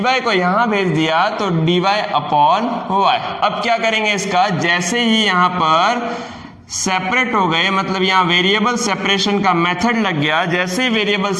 को यहां भेज दिया तो dy अपॉन y। अब क्या करेंगे इसका, जैसे ही यहां पर सेपरेट हो गए, मतलब यहाँ वेरिएबल सेपरेशन का मेथड लग गया, जैसे ही वेरिएबल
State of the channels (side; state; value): both; identical; correlation 1.00